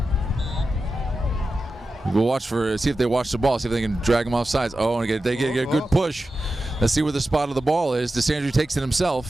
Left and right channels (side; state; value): both; normal; correlation 0.92